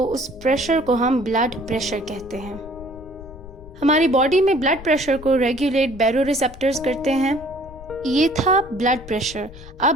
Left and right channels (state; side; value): noise; left; rumble, 16 dB below the sound